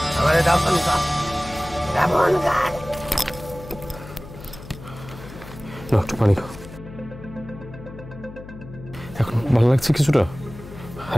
আমারে দাফন কর, দাফন কর। না একটু পানি খাও, এখন ভালো লাগছে কিছুটা,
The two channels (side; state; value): left; noise; hum, 15 dB below the sound